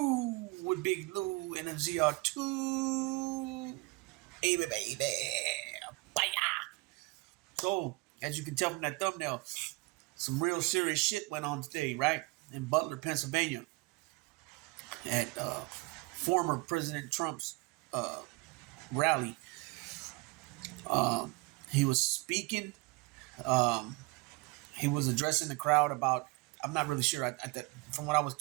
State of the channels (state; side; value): quieter; left; 25.0 dB